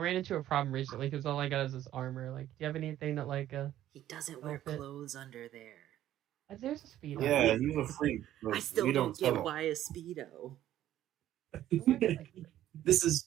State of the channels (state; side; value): quieter; left; 12.7 dB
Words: into a problem recently because all I got is this armor. Like, do you have anything that He doesn't wear outfit? clothes under there. There's a speedo. Yeah, you're a freak. I still we don't tell get him. why a speedo. This